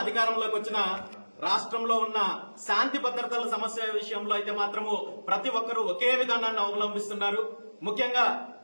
అధికారంలోకి వచ్చినా రాష్ట్రంలో ఉన్న శాంతి భద్రతల సమస్య విషయంలో అయితే మాత్రము ప్రతి ఒక్కరూ ఒకే విధానాన్ని అవలంబిస్తున్నారు. ముఖ్యంగా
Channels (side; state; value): both; inverted; correlation -1.00